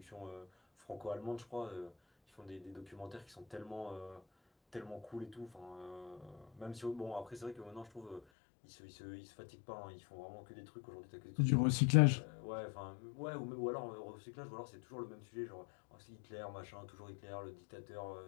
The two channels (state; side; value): drops out; right; at 8.2 s